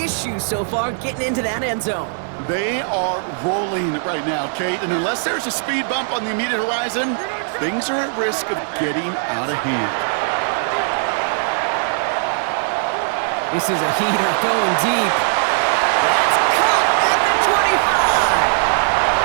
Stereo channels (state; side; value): silent; left; digital silence